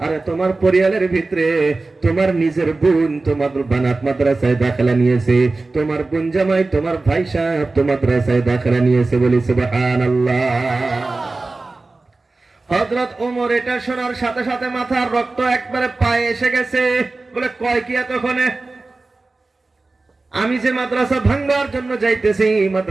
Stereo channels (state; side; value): quieter; left; 3.4 dB